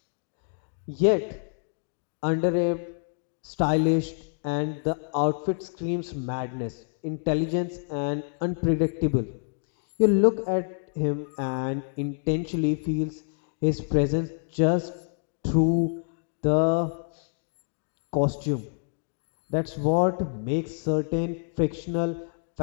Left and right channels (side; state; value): right; silent; digital silence